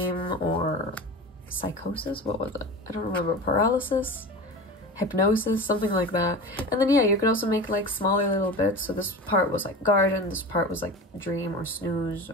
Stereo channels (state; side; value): normal; both; correlation 0.31